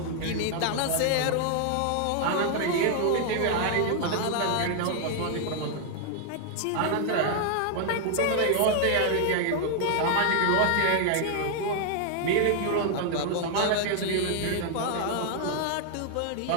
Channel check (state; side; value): different; both; correlation 0.00